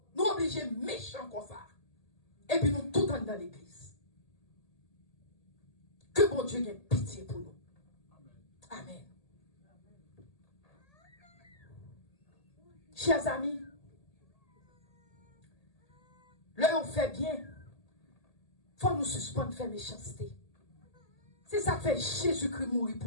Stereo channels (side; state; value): right; late; 1.8 ms